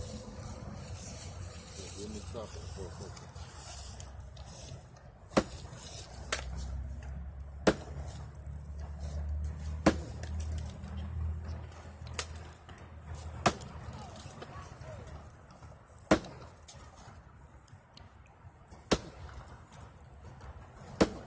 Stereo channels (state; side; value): identical; both; correlation 1.00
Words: let me stop it for a second.